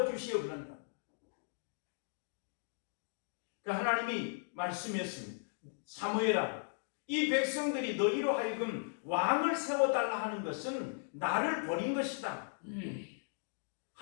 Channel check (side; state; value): right; silent; digital silence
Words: 그런다. 그러니까 하나님이 말씀했습니다. 사무엘아, 이 백성들이 너희로 하여금 왕을 세워달라 하는 것은 나를 버린 것이다.